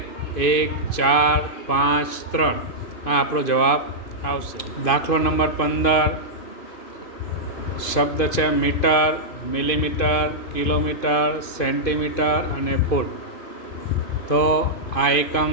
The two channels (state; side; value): late; right; 2.5 ms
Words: 1, 4, 5, 3. આ આપણો જવાબ આવશે. દાખલો નંબર 15 શબ્દ છે મીટર, મિલીમીટર, કિલોમીટર, સેન્ટીમીટર અને ફૂટ. તો આ એકમ